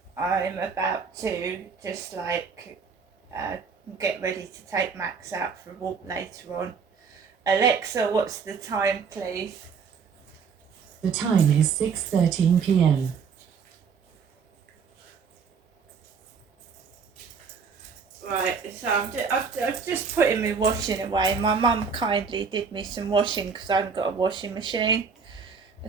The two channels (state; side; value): quieter; left; 5.8 dB